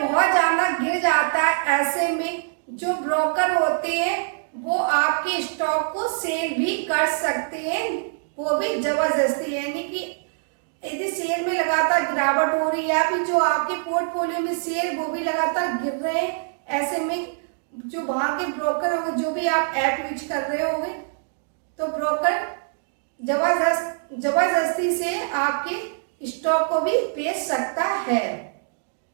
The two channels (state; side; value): silent; left; digital silence